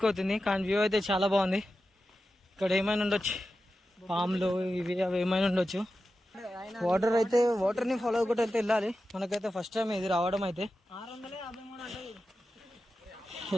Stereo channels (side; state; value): both; normal; correlation 0.92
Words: కానీ వ్యూ అయితే చాలా బాగుంది. ఇక్కడ ఏమైనా ఉండొచ్చు, పాములు ఇవి అవి ఏమైనా ఉండొచ్చు. వాటర్ అయితే వాటర్ ని ఫాలో అవ్వకుండా అయితే వెళ్ళాలి. మనకైతే ఫస్ట్ టైం ఇది రావడం అయితే